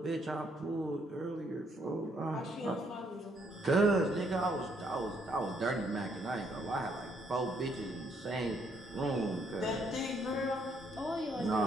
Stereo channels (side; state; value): both; normal; correlation 0.70